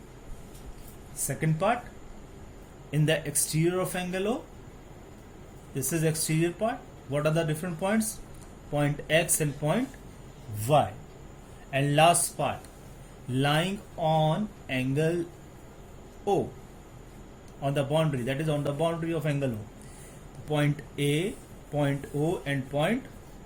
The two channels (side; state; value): both; identical; correlation 1.00